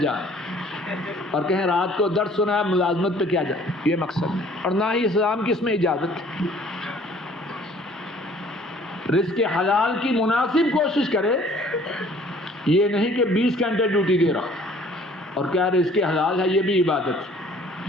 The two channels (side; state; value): both; normal; correlation 0.55